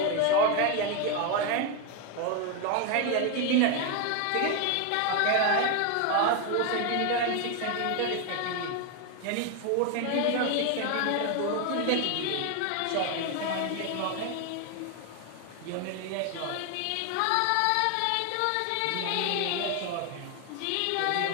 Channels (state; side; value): different; both; correlation 0.01